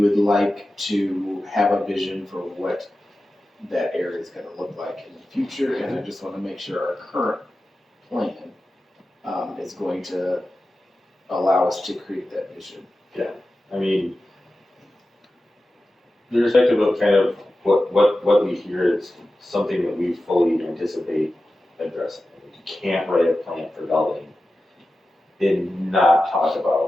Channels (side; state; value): both; normal; correlation 0.94